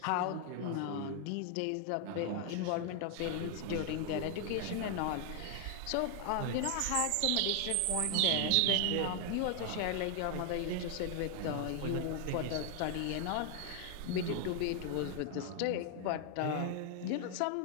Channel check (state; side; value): different; both; correlation 0.00